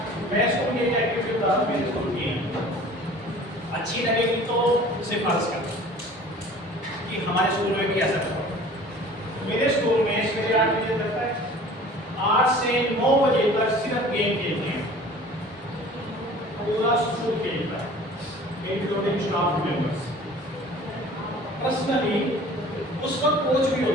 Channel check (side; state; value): both; normal; correlation 0.46